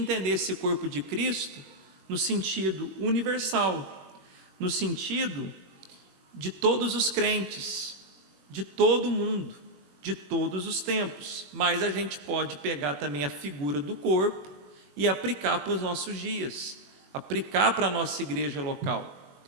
esse corpo de Cristo no sentido universal, no sentido de todos os crentes, de todo mundo, de todos os tempos, mas a gente pode pegar também a figura do corpo e aplicar para os nossos dias, aplicar para a nossa igreja local.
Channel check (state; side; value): late; left; 21 ms